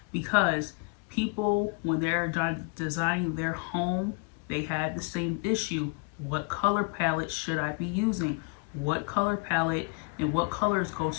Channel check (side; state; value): right; quieter; 33.1 dB